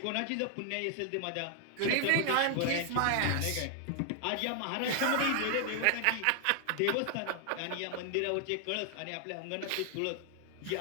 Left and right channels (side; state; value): both; different; correlation 0.00